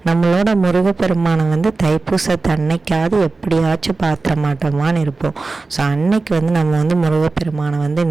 நம்மளோட முருகப்பெருமானை தைப்பூசத்து அன்னைக்காவது எப்படியாச்சும் பார்த்துட மாட்டோமான்னு இருப்போம். ஸோ அன்னைக்கு நம்ம முருகப்பெருமானை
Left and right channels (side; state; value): left; quieter; 3.7 dB